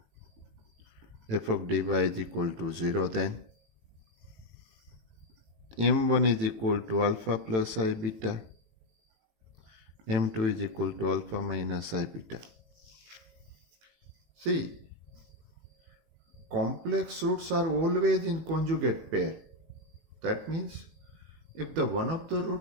f of dy is equal to 0, then m1 is equal to alpha plus I beta, m2 is equal to alpha minus I beta. See, complex roots are always in conjugate pair. That means if the one of the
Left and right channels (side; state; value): left; late; 18 ms